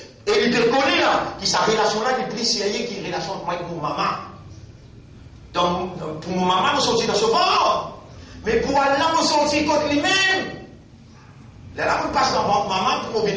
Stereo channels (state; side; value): identical; both; correlation 1.00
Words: Et il te connaît là, qui sa relation là, qui prie série, qui est relation avec mon maman. Donc, pour mon maman, nous sortis dans ce ventre. Mais pour Allah, nous sortis contre lui-même. Là, on passe dans votre maman pour